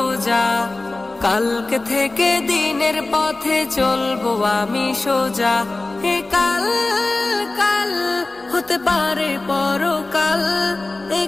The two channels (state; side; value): quieter; right; 3.1 dB